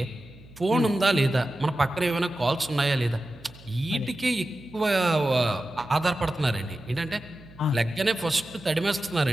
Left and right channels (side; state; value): right; noise; hum, 22 dB below the sound